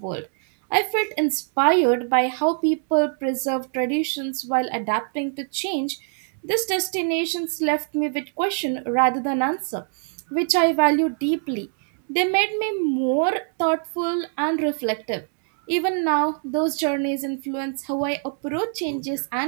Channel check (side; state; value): left; silent; 60 dB below the other